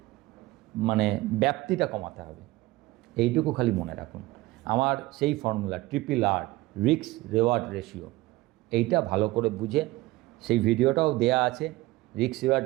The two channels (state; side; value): quieter; left; 19.2 dB